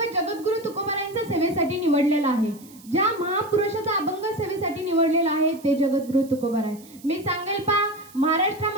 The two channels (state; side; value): noise; right; hiss, 23 dB below the sound